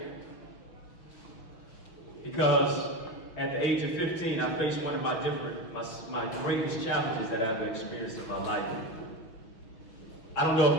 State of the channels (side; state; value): right; late; 5.9 ms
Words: because at the age of 15, I faced one of my greatest challenges that I've experienced in my life. I don't know